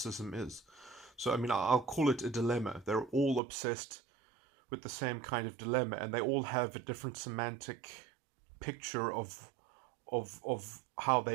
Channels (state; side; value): drops out; left; at 3.4 s